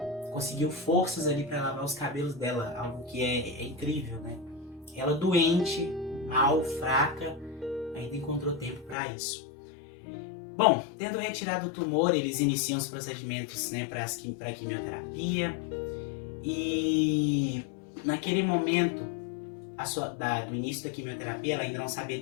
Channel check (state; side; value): drops out; right; at 9.0 s